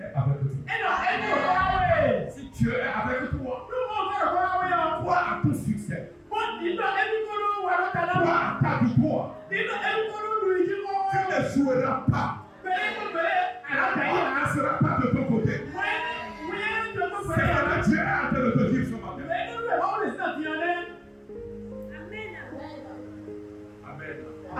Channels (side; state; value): both; identical; correlation 1.00